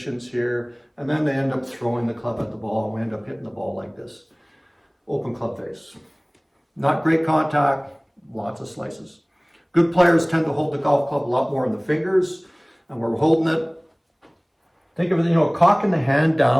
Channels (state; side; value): identical; both; correlation 1.00